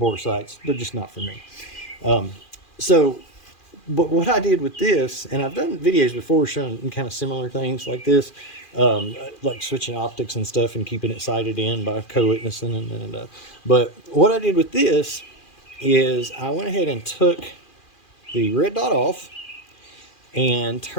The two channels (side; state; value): right; late; 2.4 ms